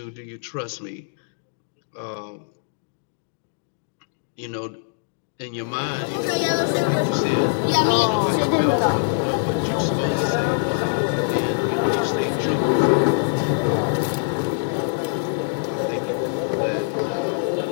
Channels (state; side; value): silent; right; digital silence